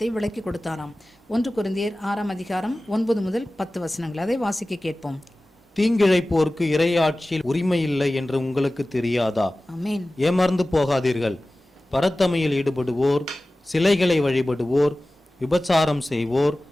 விளக்கி கொடுத்தாராம். 1 கொரிந்தியர் 6ஆம் அதிகாரம் 9 முதல் 10 வசனங்கள், அதை வாசிக்க கேட்போம். தீங்கிழைப்போருக்கு இறையாட்சியில் உரிமை இல்லை என்று உங்களுக்கு தெரியாதா? ஆமென். ஏமாந்து போகாதீர்கள். பரத்தமையில் ஈடுபடுவோர், சிலைகளை வழிபடுவோர், விபச்சாரம் செய்வோர்,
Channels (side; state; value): both; normal; correlation 0.97